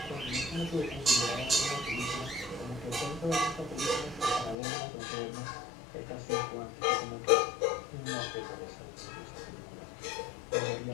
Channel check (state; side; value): drops out; right; at 4.5 s